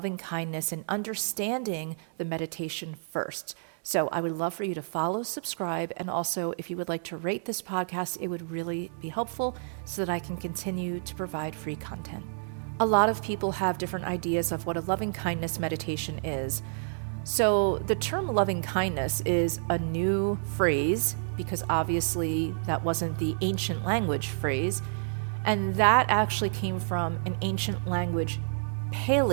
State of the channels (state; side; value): silent; left; digital silence